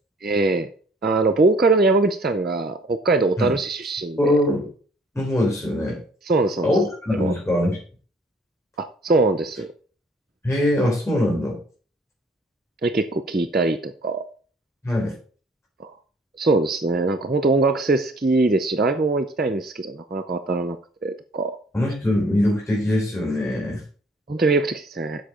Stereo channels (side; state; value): both; normal; correlation 0.57